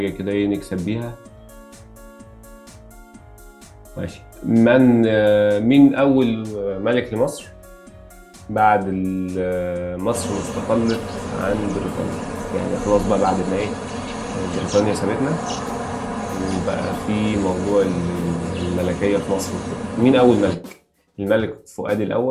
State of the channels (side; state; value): both; identical; correlation 1.00